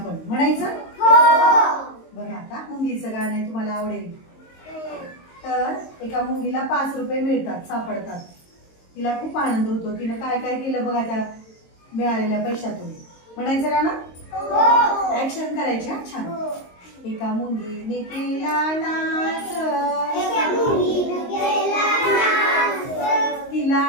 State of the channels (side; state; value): right; late; 22 ms